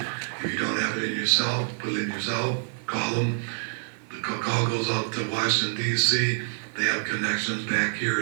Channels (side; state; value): left; silent; digital silence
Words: If you don't have it in your cell, put it in your cell, call them. The call goes out to Washington, D.C. They have connections back here